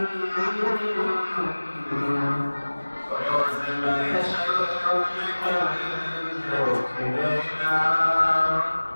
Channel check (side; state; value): both; inverted; correlation -1.00